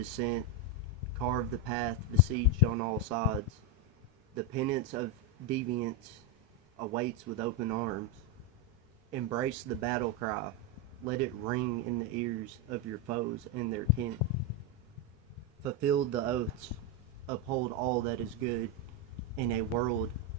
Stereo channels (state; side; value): normal; both; correlation 0.06